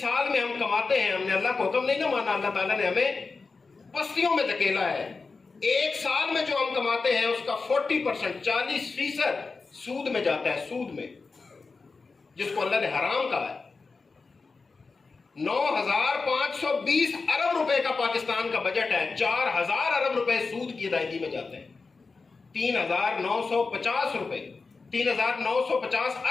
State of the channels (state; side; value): quieter; right; 4.3 dB